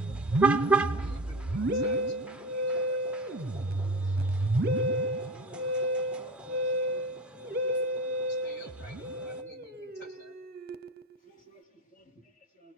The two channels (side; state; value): both; normal; correlation 0.32